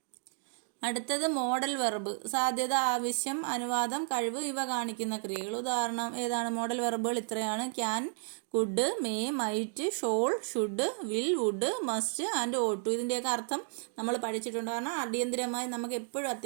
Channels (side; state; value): left; silent; 55 dB below the other